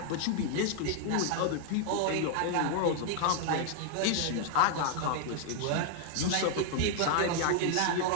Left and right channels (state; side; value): different; both; correlation 0.00